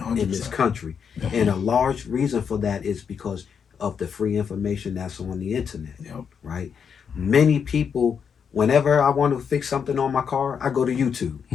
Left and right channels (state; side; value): quieter; right; 6.9 dB